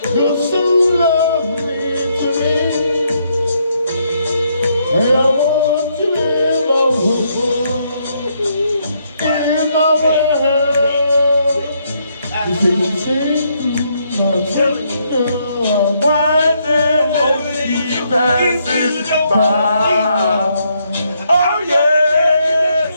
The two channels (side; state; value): both; inverted; correlation -0.74